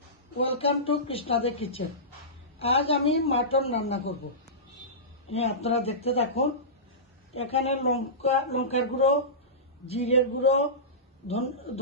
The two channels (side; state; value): both; normal; correlation -0.19